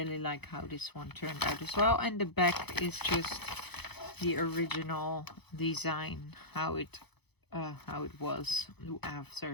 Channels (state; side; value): late; right; 0.98 ms